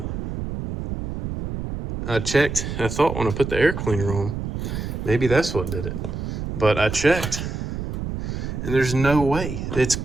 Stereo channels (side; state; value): right; noise; rumble, 5 dB below the sound